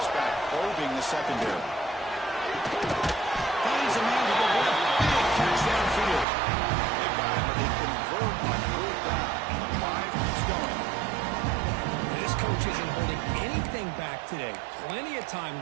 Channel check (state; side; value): drops out; left; at 6.2 s